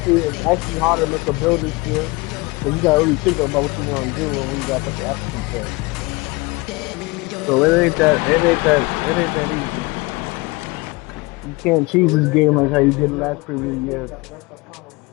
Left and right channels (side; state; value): right; quieter; 24.7 dB